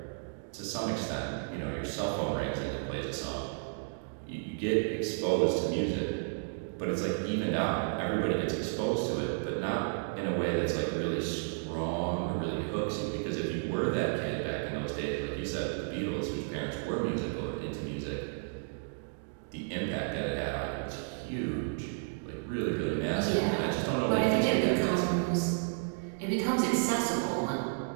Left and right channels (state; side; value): silent; left; digital silence